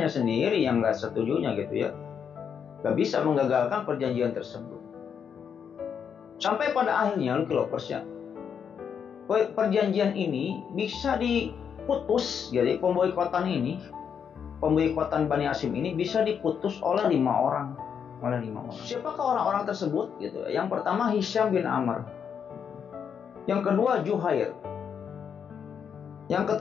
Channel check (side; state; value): right; quieter; 7.4 dB